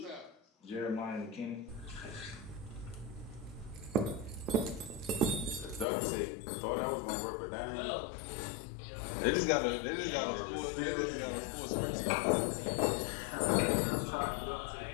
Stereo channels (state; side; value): drops out; right; at 5.9 s